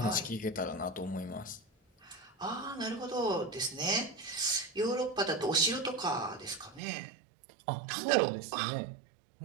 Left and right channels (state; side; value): drops out; left; at 6.8 s